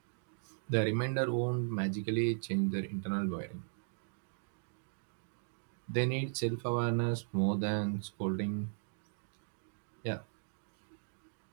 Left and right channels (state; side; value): silent; left; digital silence